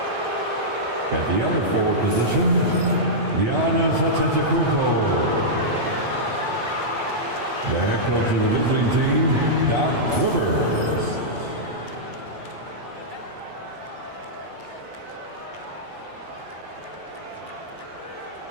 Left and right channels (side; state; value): left; late; 8.4 ms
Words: At the other forward position, Giannis Antetokounmpo. The head coach of the visiting team, Doc Rivers.